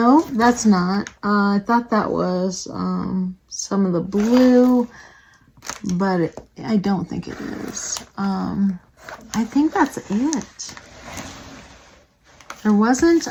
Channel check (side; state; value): both; identical; correlation 1.00